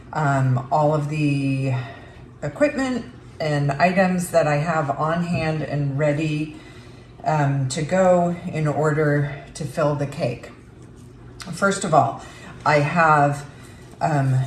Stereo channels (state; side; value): identical; both; correlation 1.00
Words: all of the equipment and items that I have on hand and ready to go in order to fill the cake. First of all, I have